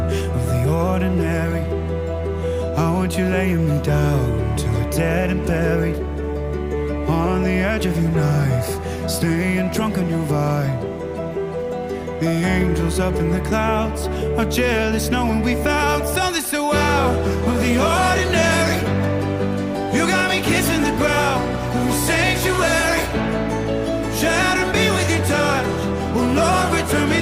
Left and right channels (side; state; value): both; identical; correlation 1.00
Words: of the ordinary. I want you laying me down till we're dead and buried, on the edge of your knife, staying drunk on your vibe. The angels up in the clouds are jealous knowing we found something so out of the ordinary. You got me kissing the ground of your sanctuary, shatter me with your touch, oh Lord, return me